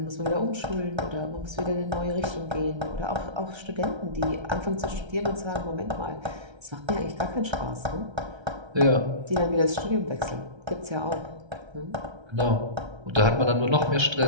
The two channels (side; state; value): left; late; 1.3 ms